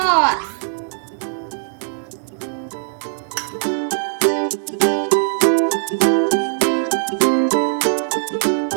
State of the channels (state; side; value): silent; left; digital silence